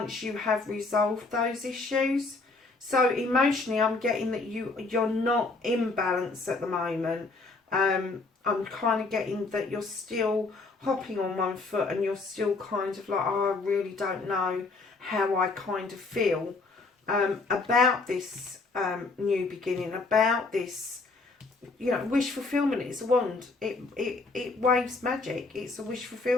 you have resolved those issues. So emotionally, I'm getting that you're not in balance at the moment. I'm kind of getting that you're still hopping on one foot and you're still kind of like, oh, I really don't know how I kind of feel about this new beginning, about this, you know, wish fulfillment. It's a wand. It waves magic. It's a wish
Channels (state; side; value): quieter; right; 3.7 dB